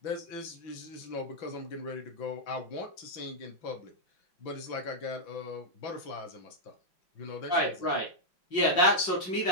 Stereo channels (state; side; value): late; right; 5.5 ms